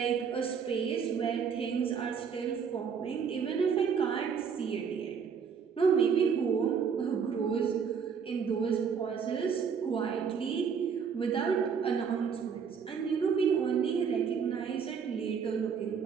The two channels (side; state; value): left; quieter; 6.6 dB